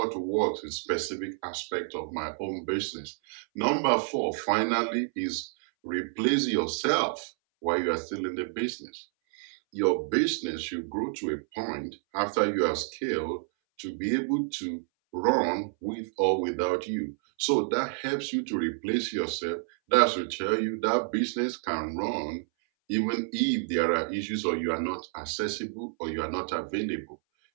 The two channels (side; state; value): left; silent; 58 dB below the other